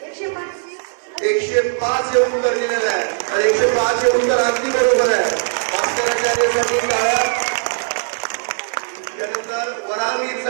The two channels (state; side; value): silent; left; digital silence